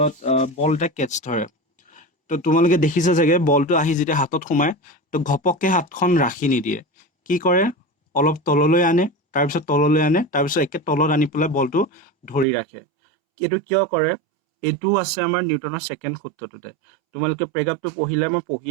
বল এটা কেটচ ধৰে, তো তোমালোকে দেখিছা চাগে বলটো আহি যেতিয়া হাতত সোমায় তো ঘপককৈ হাতখন ৰাখি নিদিয়ে, কি কৰে অলপ তললৈ আনে, তাৰপিছত তললৈ আনে, তাৰপিছত একে তলত আনি পেলাই বলটো ধৰি ৰাখে। এইটো কিয় কৰে? এইটো আছে আমাৰ নিউটনৰ ছেকেণ্ড সূত্ৰটোতে। তোমালোকে প্ৰেগ্ৰাফটো পঢ়িলে মই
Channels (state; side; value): drops out; left; at 12.5 s